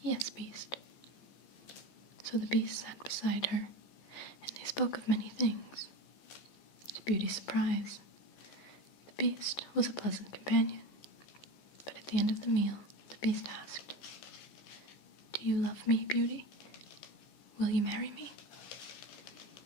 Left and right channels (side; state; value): right; late; 14 ms